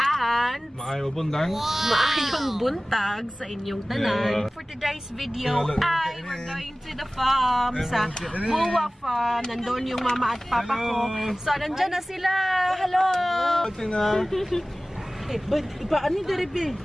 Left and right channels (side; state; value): both; normal; correlation 0.98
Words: maayong buntag sa inyong tanan. For today's video ay we're going to the farm sa Buwa Farm. Nandun yung mama at papa ko. So nandyan na sila. Hello! But paano diribi?